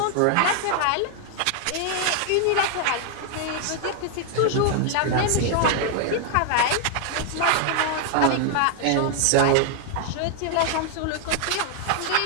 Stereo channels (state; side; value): different; both; correlation 0.00